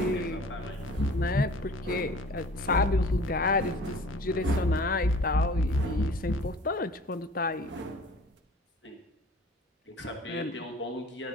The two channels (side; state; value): both; normal; correlation 0.46